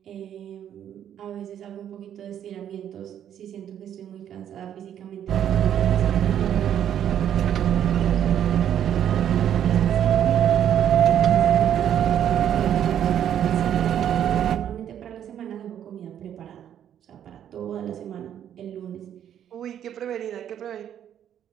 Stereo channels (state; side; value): quieter; left; 10.0 dB